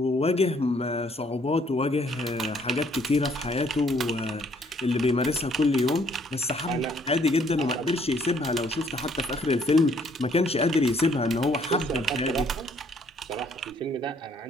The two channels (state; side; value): normal; both; correlation 0.64